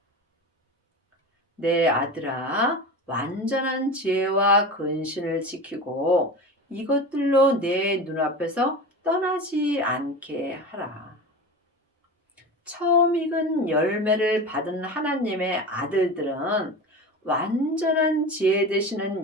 내 아들아, 완전한 지혜와 근신을 지키고 이것들로 내 눈앞에서 떠나지 않게 하라. 처음 익은 열매를 받은 하나님의 아들들은 완전한 지혜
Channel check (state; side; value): normal; both; correlation 0.29